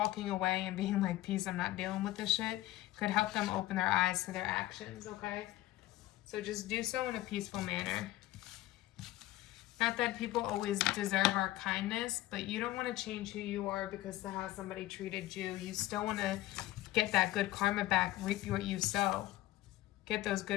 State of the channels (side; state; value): right; quieter; 16.1 dB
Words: away and being like, peace, I'm not dealing with this shit, could help them open their eyes to their actions, okay? So just do so in a peaceful manner. Not that people always deserve our kindness, but you don't want to change who you are because of how somebody treated you. You still want to get that good karma back, reap what you sow. Get those